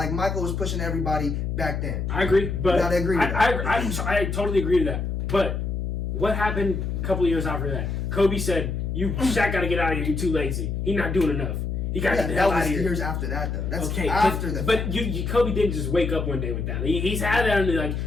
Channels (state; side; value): noise; left; hum, 2 dB below the sound